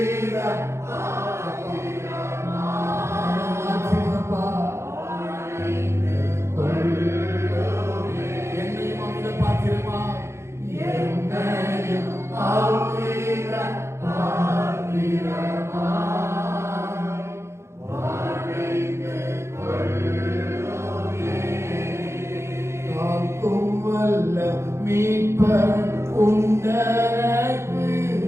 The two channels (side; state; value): left; late; 0.13 ms